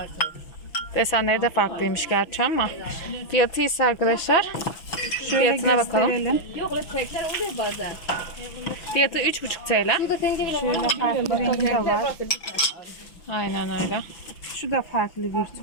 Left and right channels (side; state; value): right; late; 6.0 ms